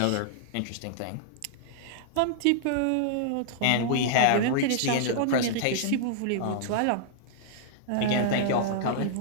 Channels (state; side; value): different; both; correlation -0.01